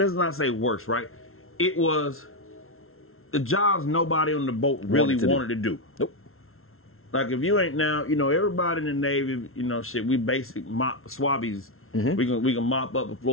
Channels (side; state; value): right; late; 0.62 ms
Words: not say worst, right? It was the jobs nobody on the boat really wanted to do. Nope. Like if you ain't now, you know, everybody in the Navy, you know, shit, we basic swabbies. We can mop up the